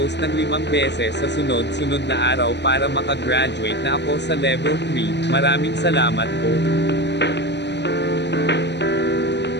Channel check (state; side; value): late; right; 0.50 ms